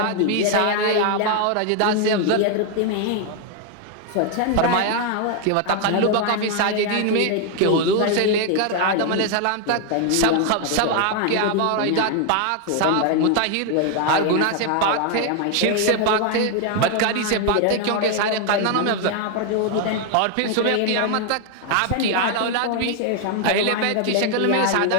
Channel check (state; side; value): different; both; correlation 0.01